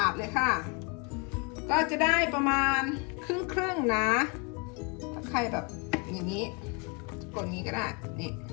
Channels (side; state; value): right; quieter; 33.0 dB